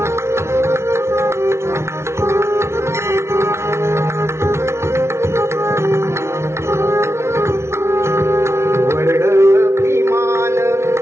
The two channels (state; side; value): late; left; 0.13 ms